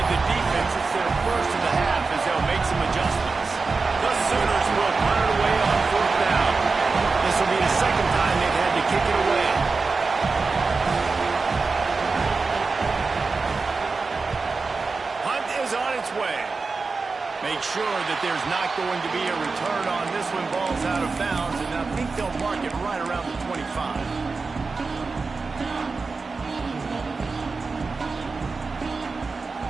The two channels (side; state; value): left; quieter; 4.2 dB